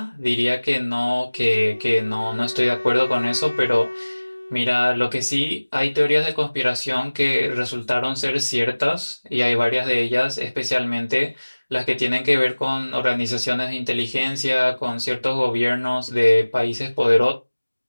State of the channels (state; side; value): inverted; both; correlation -1.00